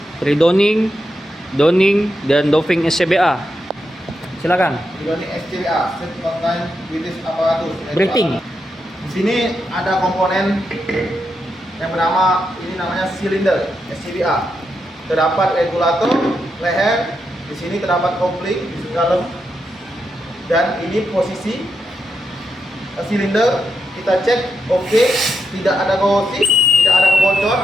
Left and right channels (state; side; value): normal; both; correlation 0.84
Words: redoning, donning, dan doving SCBA. Silakan. Redoning SCBA, Set Contain British Apparatus. Breathing. Di sini ada komponen yang bernama, ini namanya silinder SCBA. Terdapat regulator leher, di sini terdapat kopling di dalam, dan ini posisi silinder. Kita cek oke, tidak ada korosi, tidak ada kebocoran